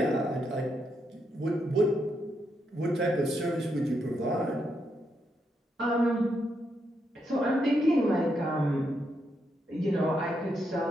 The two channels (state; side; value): normal; both; correlation 0.80